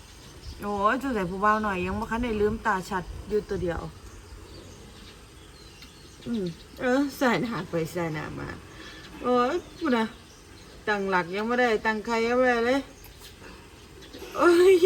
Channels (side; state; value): both; identical; correlation 1.00